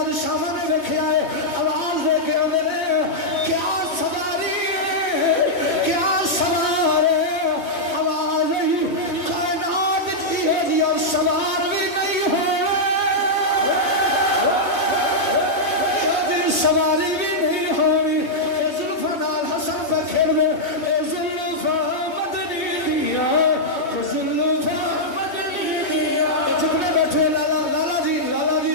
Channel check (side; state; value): right; late; 3.1 ms